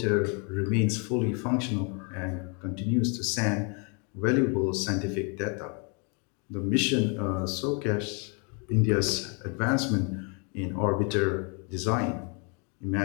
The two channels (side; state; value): right; quieter; 35.5 dB